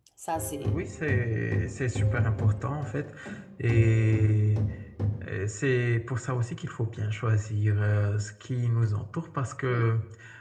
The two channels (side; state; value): both; identical; correlation 1.00